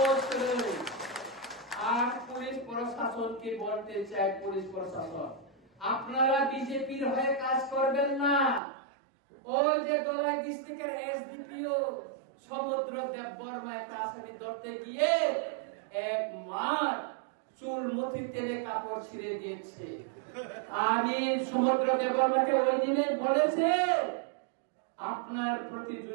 করে আর পুলিশ প্রশাসনকে বলতে চাই পুলিশ প্রশাসন আপনারা বিজেপির হয়ে কাজ করবেন না ওই যে দলাই ডিস্ট্রিক্টের এসডিপিও সমুদ্র দেববর্মা একটা আসামি ধরতে গিয়ে এক মার চুল মুঠি তেলে কাপড় ছিঁড়ে দিয়েছে আমি সমুদ্র দেববর্মাকে ওই দিনে বলেছে আপনার প্রতি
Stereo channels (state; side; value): drops out; left; at 8.6 s